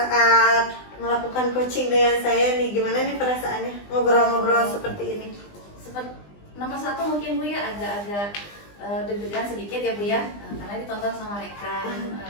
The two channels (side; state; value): right; late; 20 ms